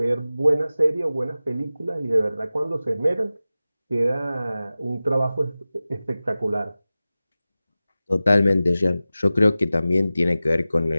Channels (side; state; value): both; inverted; correlation -0.96